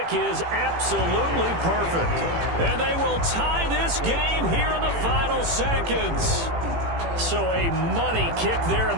is absolutely perfect. And they will tie this game here in the final seconds. So a money kick there in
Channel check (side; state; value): left; late; 18 ms